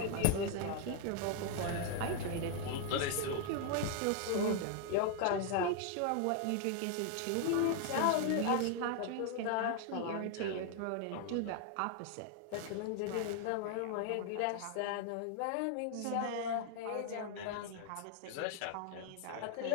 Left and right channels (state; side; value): different; both; correlation 0.00